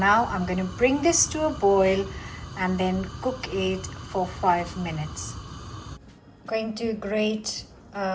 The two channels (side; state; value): both; identical; correlation 1.00